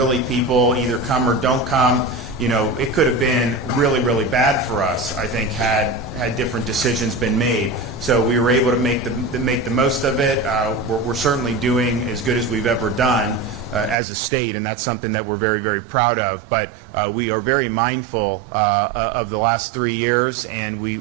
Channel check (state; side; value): drops out; left; at 14.0 s